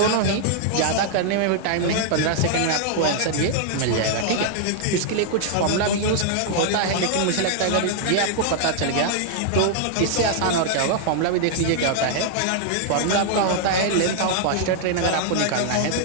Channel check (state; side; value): different; both; correlation 0.00